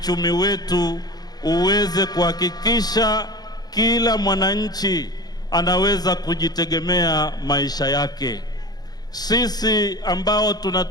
wetu uweze kuhakikisha kila mwananchi anaweza kujitegemea maisha yake. Sisi ambao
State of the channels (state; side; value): late; right; 0.19 ms